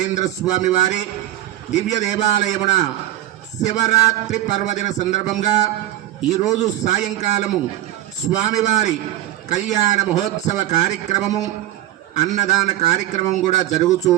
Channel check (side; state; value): left; quieter; 14.0 dB